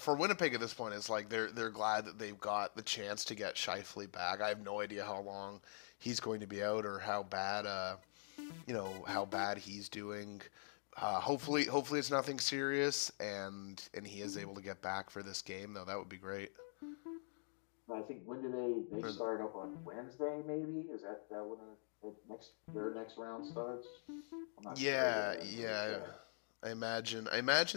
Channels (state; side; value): silent; right; digital silence